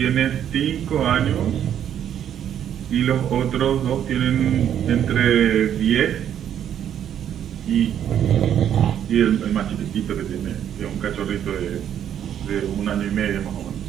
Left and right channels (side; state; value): left; quieter; 9.8 dB